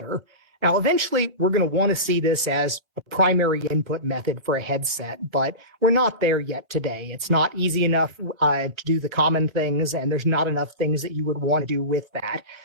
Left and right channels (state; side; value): late; left; 1.4 ms